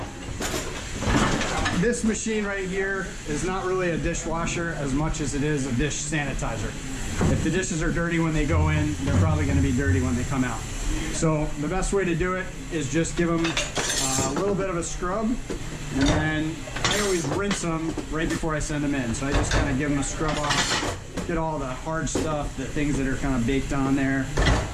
this machine right here is not really a dishwasher as much as it is a dish sanitizer. If the dishes are dirty when they go in, they're probably going to be dirty when they come out. So the best way to do it is just give them a little bit of a scrub, and then I always rinse them right before I send them in. So I just kind of give them a scrub off, get all the hard stuff, the things that are kind of baked on there,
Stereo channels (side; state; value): both; identical; correlation 1.00